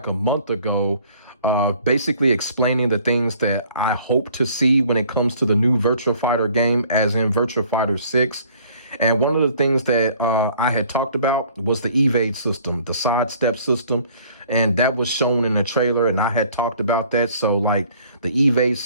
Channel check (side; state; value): both; inverted; correlation -0.56